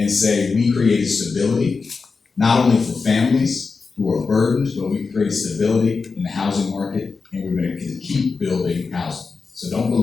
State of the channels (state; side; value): quieter; right; 4.6 dB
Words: say we created stability, not only for families who are burdened, but we created stability in the housing market, and we're gonna keep building housing. So don't